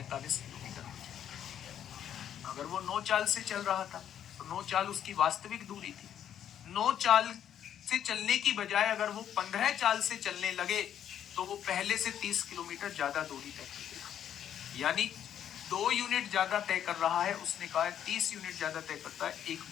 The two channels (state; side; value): quieter; right; 9.9 dB